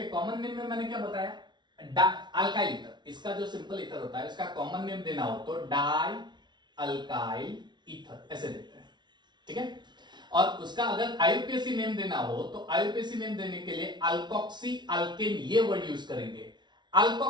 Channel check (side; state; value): left; late; 0.21 ms